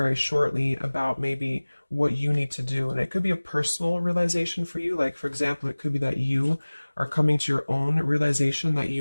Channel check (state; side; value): inverted; both; correlation -1.00